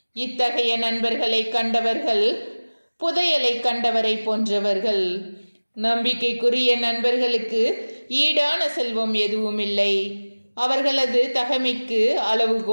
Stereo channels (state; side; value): inverted; both; correlation -1.00